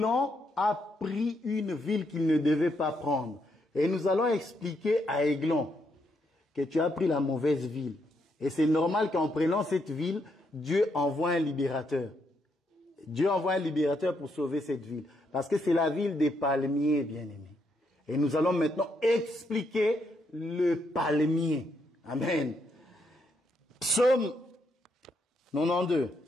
a pris une ville qu'il ne devait pas prendre. Et nous allons expliquer à Aiglon que tu as pris la mauvaise ville. Et c'est normal qu'en prenant cette ville, Dieu envoie un libérateur. Dieu envoie un libérateur pour sauver cette ville. Parce que c'est la ville des palmiers, bien-aimés. Et nous allons maintenant expliquer le palmier. Amen. Psaume 92.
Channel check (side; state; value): both; normal; correlation 0.77